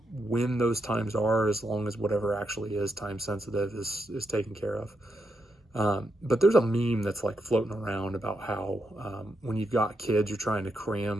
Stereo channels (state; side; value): normal; both; correlation 0.83